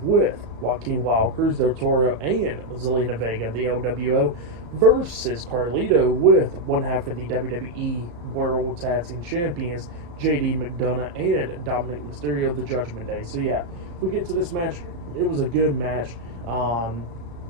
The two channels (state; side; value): late; left; 34 ms